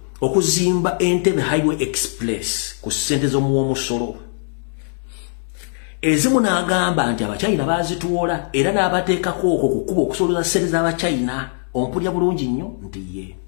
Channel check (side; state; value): right; silent; 65 dB below the other